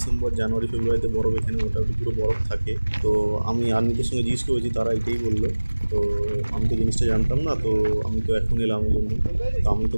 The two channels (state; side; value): inverted; both; correlation -1.00